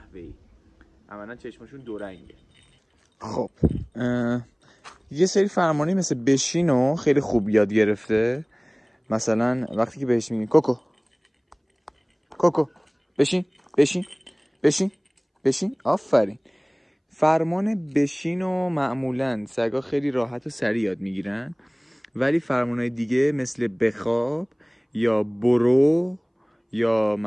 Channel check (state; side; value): identical; both; correlation 1.00